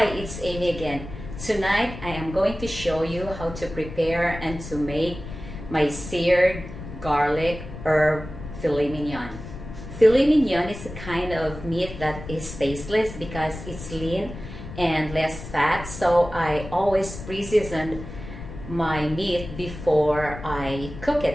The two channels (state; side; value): noise; left; rumble, 11 dB below the sound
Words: it's Amy again. Tonight I am going to show you how to prepare and to make my seared garlic herb filet mignon. Filet mignon is a kind of meat that is tasteless because it's lean and less fat, so I always pre-season my meat before I cook